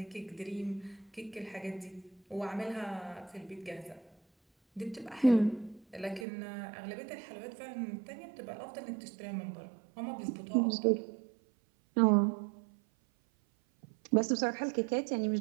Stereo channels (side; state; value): left; drops out; at 6.2 s